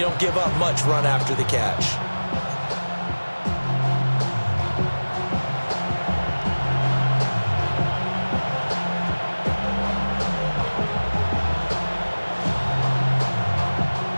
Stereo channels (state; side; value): inverted; both; correlation -1.00